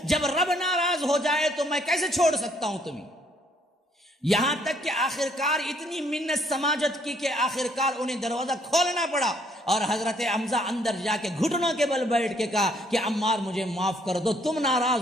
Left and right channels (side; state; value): both; normal; correlation 0.66